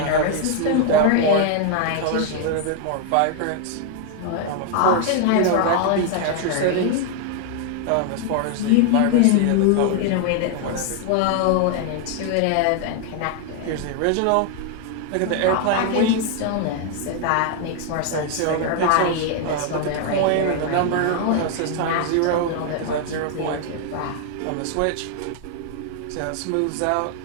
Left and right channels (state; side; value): different; both; correlation 0.00